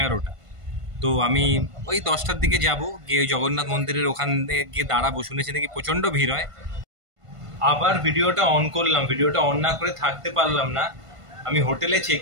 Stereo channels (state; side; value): late; left; 1.5 ms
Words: তো আমি ওই 10টার দিকে যাব, গিয়ে ওই জগন্নাথ মন্দিরের ওখানে গিয়ে দাঁড়াবো। শুনেছি নাকি প্রচণ্ড ভিড় হয়। আবার ভিডিওটা অন করলাম, ভিডিওটা অন না করে থাকতে পারলাম না। আমি হোটেলে